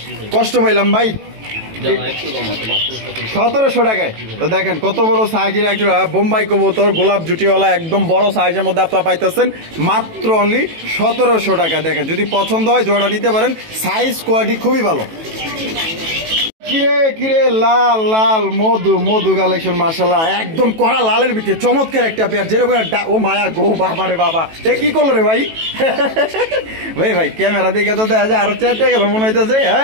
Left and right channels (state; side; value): late; left; 18 ms